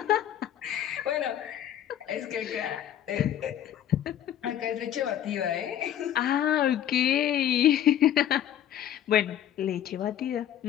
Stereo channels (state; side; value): quieter; right; 10.8 dB